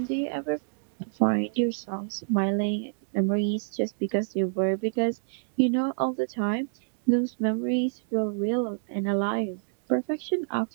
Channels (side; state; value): left; silent; digital silence